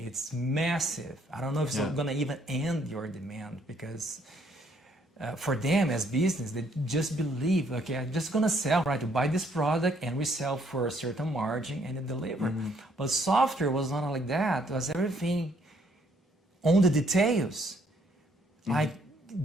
massive. I don't know if it's going to even end your demand, because for them as business, they just believe, okay, I'm just going to sell, right? To buy this product and we sell for a certain margin and deliver. But software was not like that. It was everything on the details. Like,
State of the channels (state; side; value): normal; both; correlation 0.67